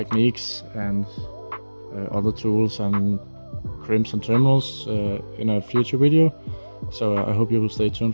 and other tools and crimps and terminals in a future video. So I hope you will stay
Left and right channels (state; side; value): inverted; both; correlation -1.00